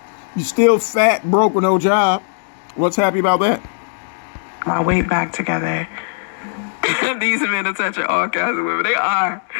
You still fat, broke with no job. What's happy about that? weight back together. These men are touching all kinds of women. They are.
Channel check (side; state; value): right; silent; digital silence